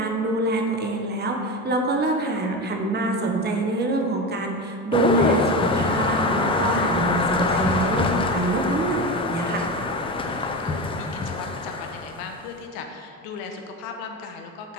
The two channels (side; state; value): both; normal; correlation 0.23